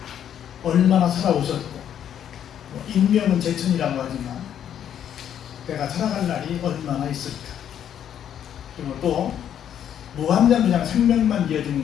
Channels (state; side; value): quieter; right; 9.6 dB